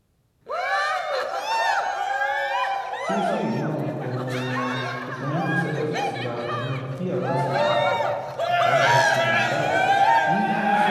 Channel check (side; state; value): both; identical; correlation 1.00